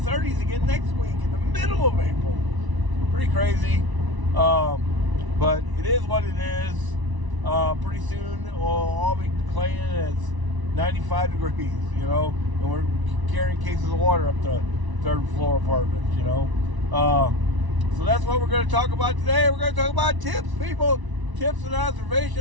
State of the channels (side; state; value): left; late; 1.0 ms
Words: again next week in the middle of April. Pretty crazy. But it is what it is. Pretty soon we'll all be claiming it's 95 degrees, and we're carrying cases of water up to third floor apartments, So that's what we're going to talk about today. We're going to talk about tips, people. Tips and